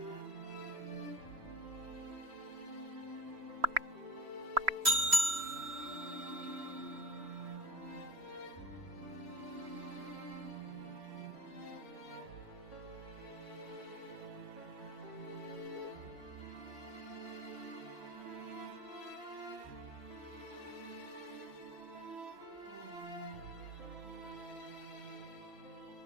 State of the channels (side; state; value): left; late; 3.1 ms